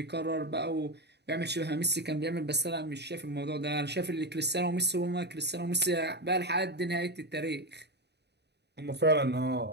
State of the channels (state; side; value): late; left; 0.49 ms